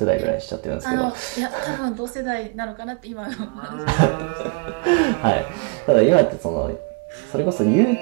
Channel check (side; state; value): left; quieter; 33.1 dB